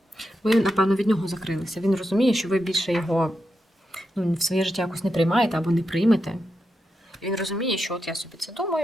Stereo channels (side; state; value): both; normal; correlation 0.86